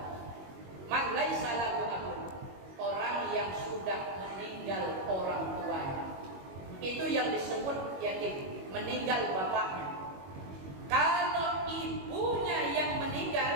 Man laisa lahu abad. Orang yang sudah meninggal orang tuanya. Itu yang disebut yatim, meninggal bapaknya. Kalau ibunya yang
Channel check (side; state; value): left; late; 21 ms